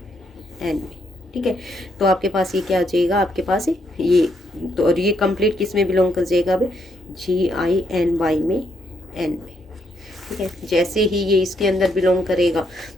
एन में। ठीक है, तो आपके पास ये क्या आ जाएगा आपके पास ये, तो और ये कंप्लीट किस में बिलोंग कर जाएगा अब जी आई एन वाई में एन में। ठीक है, जैसे ही ये इसके अंदर बिलोंग करेगा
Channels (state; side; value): normal; both; correlation 0.75